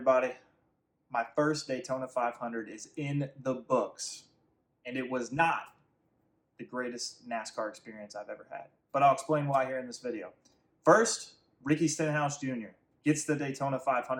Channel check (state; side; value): identical; both; correlation 1.00